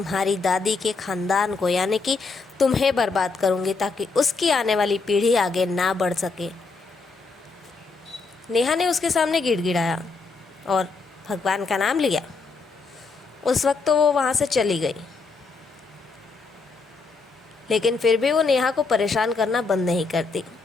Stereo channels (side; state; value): right; quieter; 4.2 dB